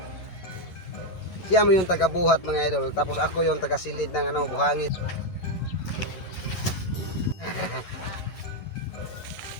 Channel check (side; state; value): right; late; 11 ms